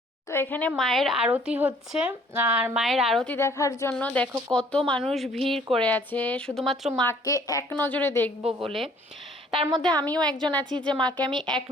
তো এখানে মায়ের আরতি হচ্ছে, আর মায়ের আরতি দেখার জন্য দেখো কত মানুষ ভিড় করে আছে শুধুমাত্র মাকে এক নজরে দেখবো বলে। তার মধ্যে আমিও একজন আছি যে মাকে আমি এক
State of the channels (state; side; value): normal; both; correlation 0.58